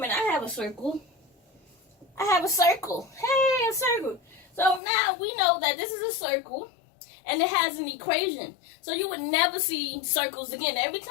I have a circle. Hey, a circle. So now we know that this is a circle and it has an equation. So you would never see circles again. Every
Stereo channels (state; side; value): drops out; right; at 4.8 s